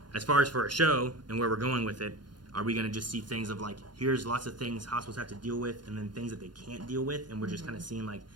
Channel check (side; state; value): left; late; 0.71 ms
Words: as far as for a show and where we're going with it, are we going to just see things of like, here's lots of things hospitals have to deal with and then things that they can't deal with, and we're just kind of seeing like